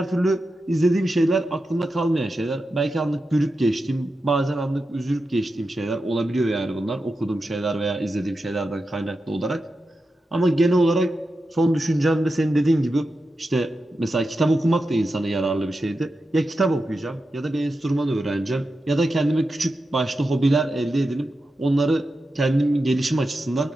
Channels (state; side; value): normal; both; correlation 0.90